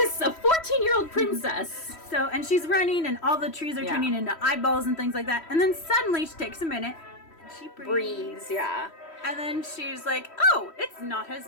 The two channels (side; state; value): right; late; 3.1 ms